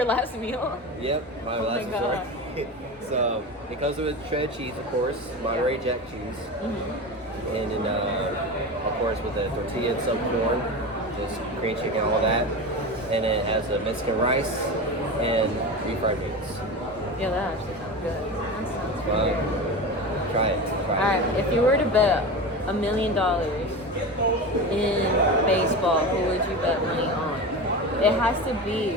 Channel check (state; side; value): normal; both; correlation 0.26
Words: last meal? Yep, my Oh last my God. resort. So it comes with shredded cheese, of course, Monterey Jack cheese, and then of course with the tortilla and some corn, just green chicken, all that, and it has a Mexican rice and refried beans. Yeah, that actually sounds good. That sounds Well, good. try it. Alright, if you were to bet $1 million in baseball, who would you bet money on? It has to be,